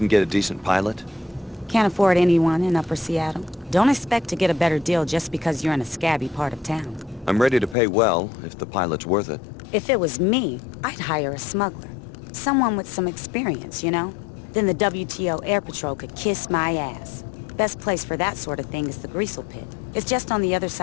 get a decent pilot? Can't afford anyone in Upper Seattle. Don't expect to get a better deal just because you're in a scabby part of town. I'm ready to pay well, if the pilot's worth it. If it was me, I'd hire a smuggler. Someone with some experience, you know? Then the WTO Air Patrol could kiss my ass. Best place for that sort of thing is the Greasel Pit. It's just on the other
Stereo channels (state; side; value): drops out; right; at 7.8 s